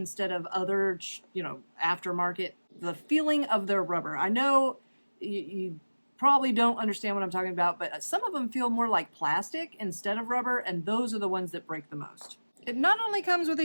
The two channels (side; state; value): both; inverted; correlation -1.00